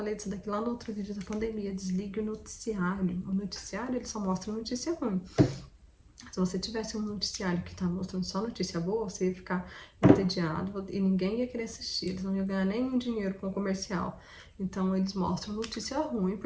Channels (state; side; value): identical; both; correlation 1.00